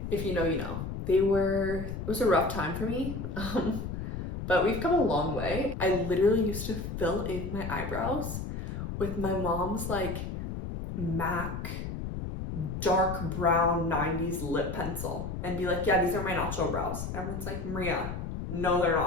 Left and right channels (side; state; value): left; noise; rumble, 5 dB below the sound